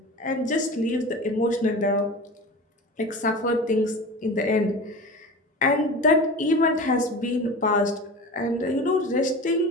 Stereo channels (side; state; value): both; normal; correlation 0.32